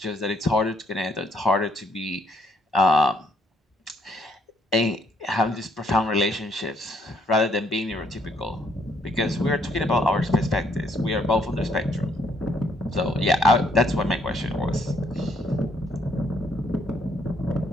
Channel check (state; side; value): normal; both; correlation 0.69